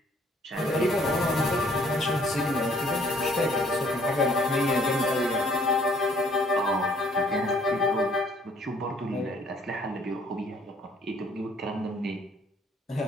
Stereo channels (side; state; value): both; normal; correlation 0.61